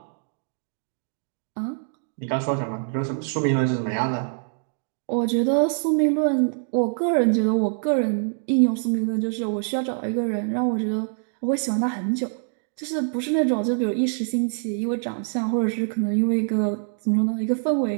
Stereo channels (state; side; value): silent; left; digital silence